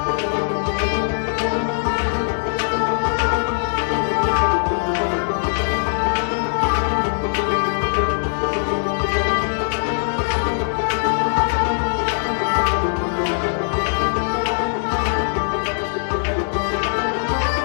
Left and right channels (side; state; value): right; silent; 62 dB below the other